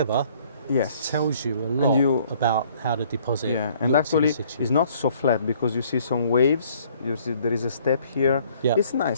tells you a lot about how the deposit. Yeah, and actually it's not so flat because you see some waves. You see there is a step here. Yeah. It's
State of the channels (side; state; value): both; inverted; correlation -0.60